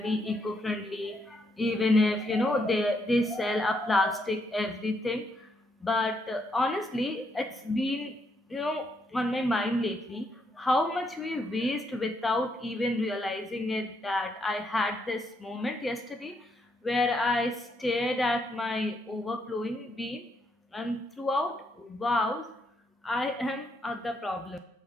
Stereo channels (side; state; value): both; normal; correlation 0.76